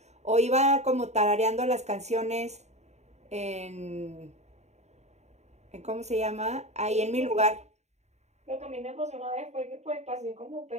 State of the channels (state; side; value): late; left; 0.32 ms